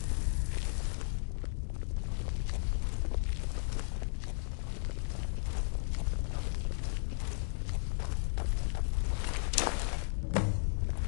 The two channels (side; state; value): right; silent; digital silence